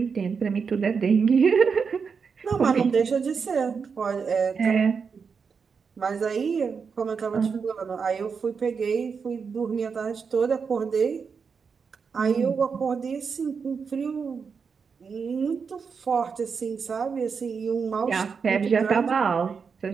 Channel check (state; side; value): quieter; left; 5.7 dB